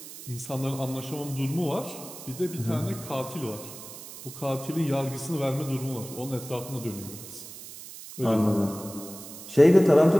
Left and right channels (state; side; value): noise; right; hiss, 14 dB below the sound